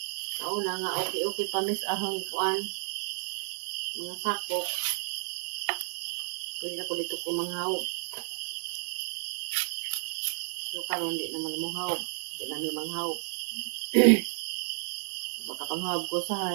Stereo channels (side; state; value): left; silent; digital silence